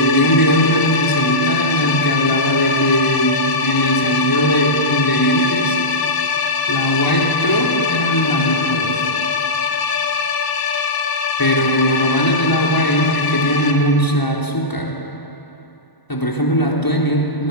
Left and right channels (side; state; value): right; late; 1.0 ms